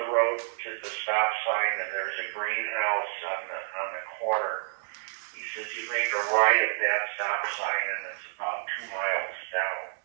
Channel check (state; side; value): silent; left; digital silence